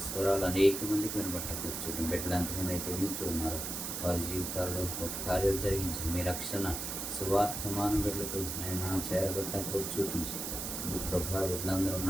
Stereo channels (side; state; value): right; noise; hiss, 4 dB below the sound